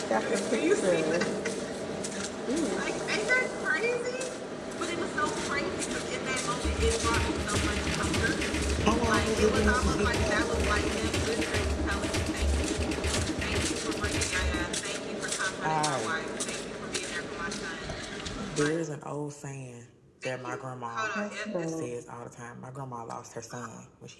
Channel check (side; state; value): both; identical; correlation 1.00